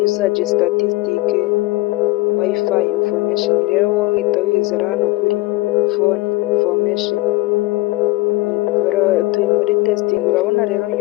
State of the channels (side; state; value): right; quieter; 21.0 dB